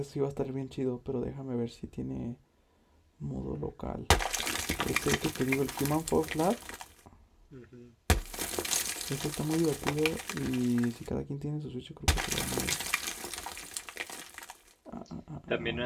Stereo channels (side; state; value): both; identical; correlation 1.00